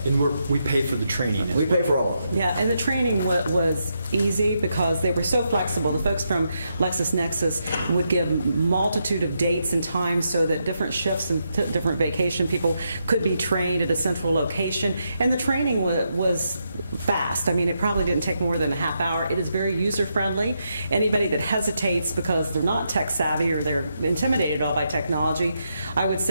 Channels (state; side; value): inverted; both; correlation -0.82